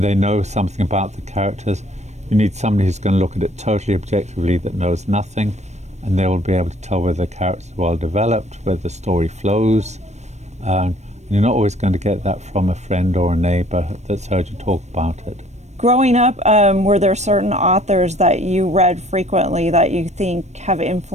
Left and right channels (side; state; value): left; late; 0.33 ms